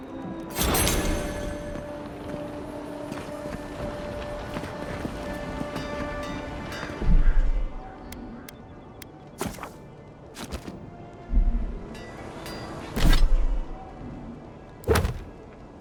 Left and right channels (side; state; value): both; identical; correlation 1.00